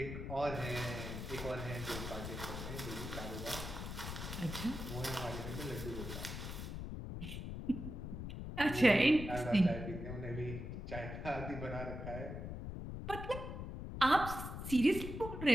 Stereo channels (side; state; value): left; noise; rumble, 6 dB below the sound